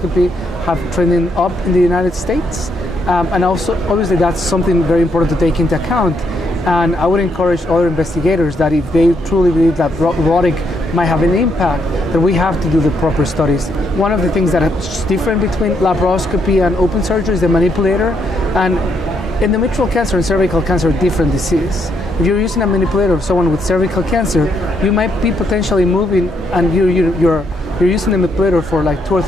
have trending up in the United States. And also, obviously, that's something very important to take into account. And I would encourage other investigators that if they truly believe that robotic might have an impact, that we have to do the proper studies. One of the things that is different between laparoscopy and open surgery is the manipulator. And endometrial cancer and cervical cancer are different diseases. If you're using a manipulator of someone with cervical cancer, you might be potentially moving, and you're using the manipulator for like 2 or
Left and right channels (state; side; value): normal; both; correlation 0.76